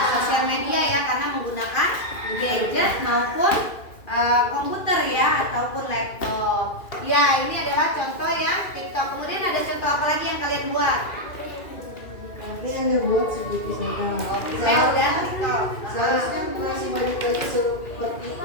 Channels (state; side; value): late; right; 2.4 ms